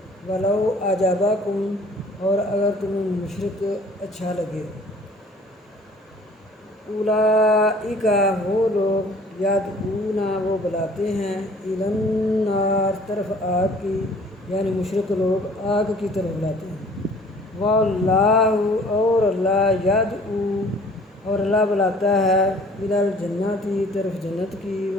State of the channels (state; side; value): normal; both; correlation 0.52